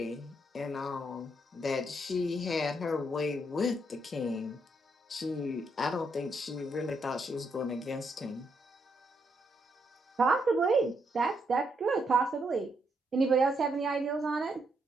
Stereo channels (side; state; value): both; normal; correlation 0.77